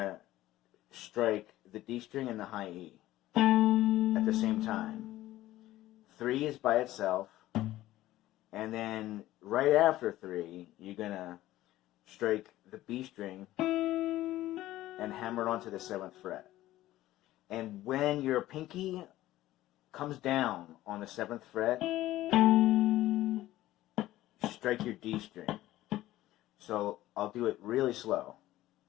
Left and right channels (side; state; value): right; quieter; 15.4 dB